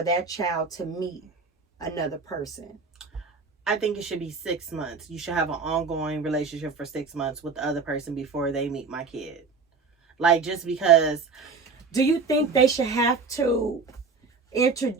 that child to meet another person? I think it should be 6 months. You should have an ongoing relationship for 6 months with the other person before they meet my kid. Like, just because. Do you think they should have to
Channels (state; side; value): quieter; left; 4.6 dB